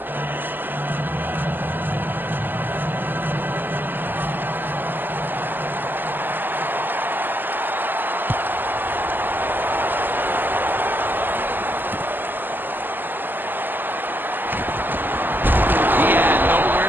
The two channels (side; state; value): left; late; 0.090 ms